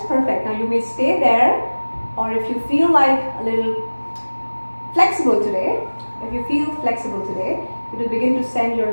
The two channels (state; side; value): inverted; both; correlation -1.00